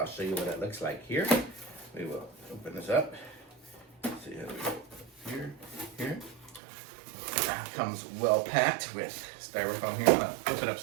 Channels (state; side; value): drops out; left; at 6.6 s